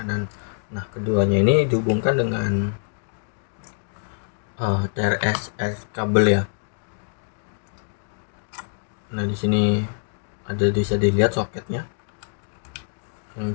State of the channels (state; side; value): silent; right; digital silence